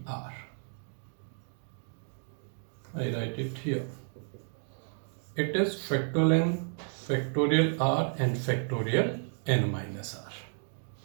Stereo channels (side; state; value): left; silent; 56 dB below the other